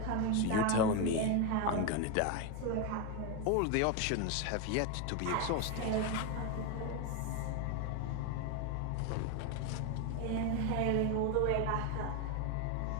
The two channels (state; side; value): different; both; correlation 0.02